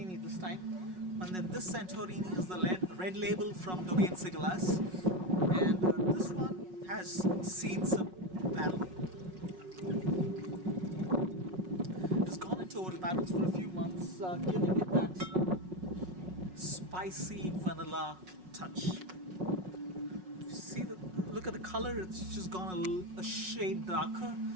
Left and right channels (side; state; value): left; late; 5.4 ms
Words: this time, and then this Santorini is the red label from Domaine Sigalas, and this one has seen some battle. It's gone into old barrels for a few months, giving it that spicy vanilla touch. Look at the color, it's just gone a shade darker